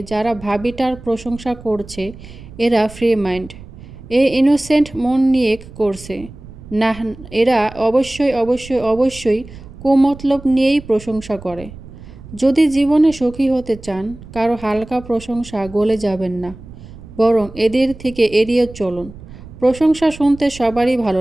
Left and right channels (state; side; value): noise; right; rumble, 17 dB below the sound